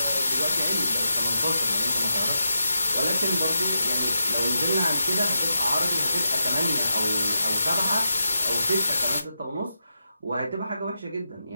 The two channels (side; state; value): both; inverted; correlation -0.86